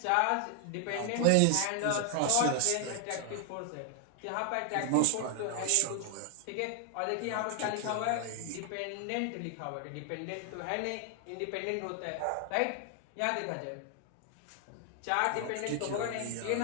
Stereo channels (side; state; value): both; different; correlation 0.00